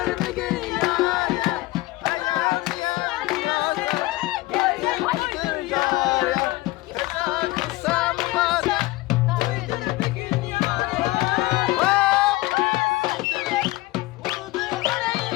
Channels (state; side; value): quieter; right; 19.8 dB